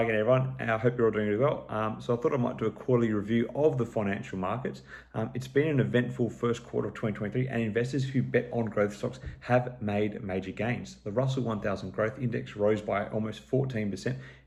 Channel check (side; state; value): both; identical; correlation 1.00